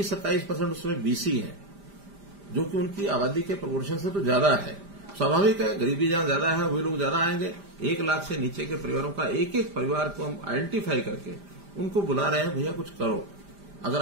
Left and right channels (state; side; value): late; left; 5.0 ms